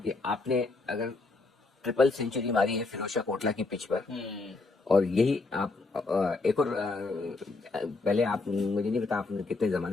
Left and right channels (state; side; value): quieter; right; 3.7 dB